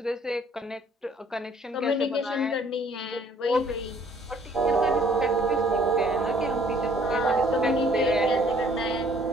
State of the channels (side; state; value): both; normal; correlation 0.60